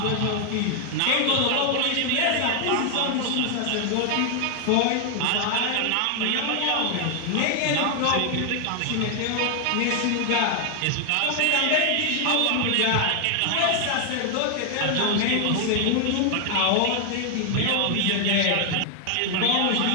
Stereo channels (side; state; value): both; different; correlation 0.00